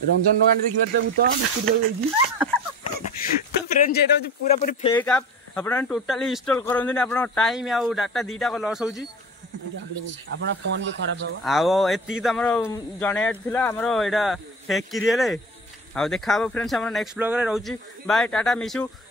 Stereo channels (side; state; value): both; normal; correlation 0.35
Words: ରଞ୍ଜନ ଦୋକାନ ଦେଖିବାରେ ଭୂତ ତ ଫ୍ରେଣ୍ଡସ୍ ଏଇଟା ହଉଛି ପୁରା ପୁରି ଫେକ୍ ଆପ୍। ଆପଣମାନେ ଟୋଟାଲି ଇନଷ୍ଟଲ୍ କରନ୍ତୁନି, ଆପଣଙ୍କ ଟାଇମ୍ ଆଉ ଡାଟା ଦିଟାକ ଲସ୍ ହେଉଛି। ଆପଣ ଫୋନ୍ ବି ଖରାପ ହବ। ଆଉ ଏତିକି ତ ଆମର ଜଣେଇବାର ଥିଲା, ଆମର ଏଇଟା ଫେକ୍ କିରିଏଲେ। ଆଉ ଦେଖା ହବ ଫ୍ରେଣ୍ଡସ୍ ଆମର ନେକ୍ସଟ ବ୍ଲଗରେ। ରହୁଛି ବାଏ, ଟାଟା, ମିଶୁ,